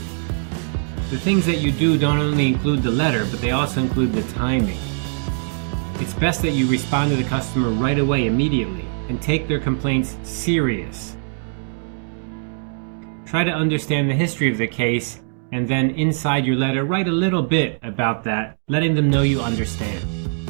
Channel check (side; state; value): left; silent; digital silence